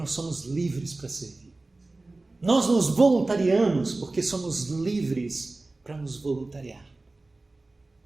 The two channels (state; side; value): quieter; left; 3.1 dB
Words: somos livres para servir. Nós nos voluntariamos porque somos livres para nos voluntariar.